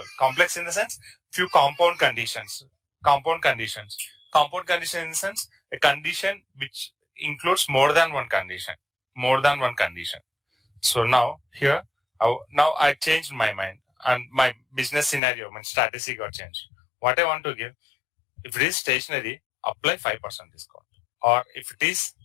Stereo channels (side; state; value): right; drops out; at 15.2 s